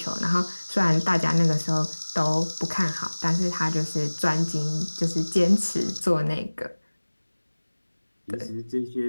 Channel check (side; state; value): both; inverted; correlation -1.00